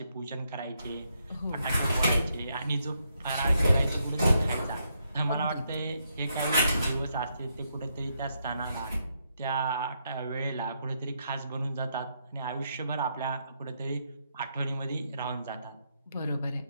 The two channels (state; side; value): inverted; both; correlation -0.78